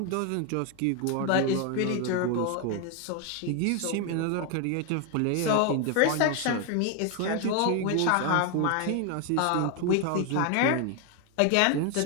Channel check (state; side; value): different; both; correlation 0.01